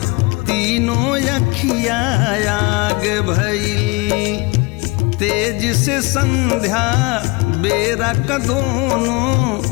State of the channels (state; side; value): quieter; right; 26.0 dB